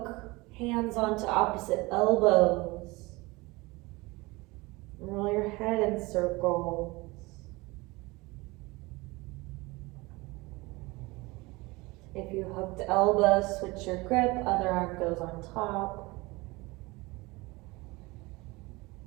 hands onto opposite elbows. Roll your head in circles. If you hooked elbows, switch your grip, other arm goes on top.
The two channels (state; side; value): quieter; left; 23.2 dB